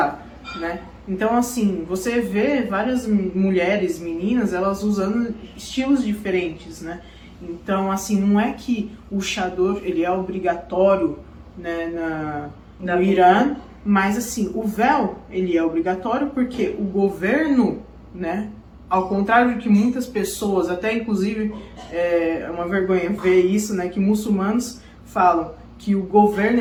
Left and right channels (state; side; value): identical; both; correlation 1.00